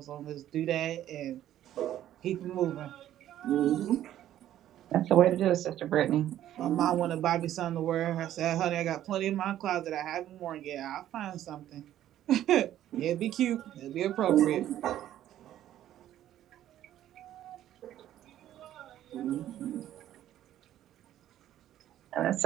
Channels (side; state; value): left; quieter; 12.2 dB